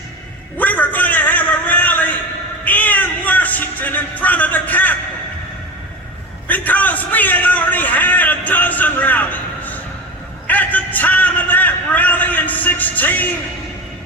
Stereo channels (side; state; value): both; normal; correlation 0.26